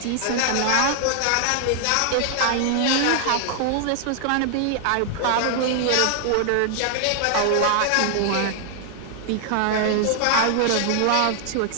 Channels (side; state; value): both; different; correlation 0.00